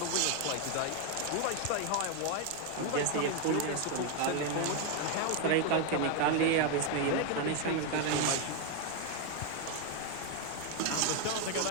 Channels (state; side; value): different; both; correlation 0.01